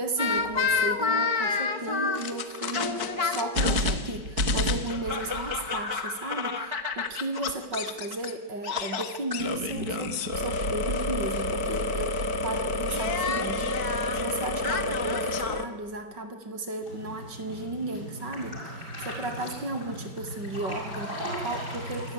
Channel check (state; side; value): late; left; 5.2 ms